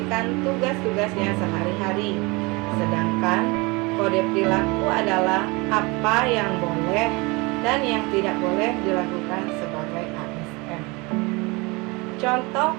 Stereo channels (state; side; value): quieter; left; 25.9 dB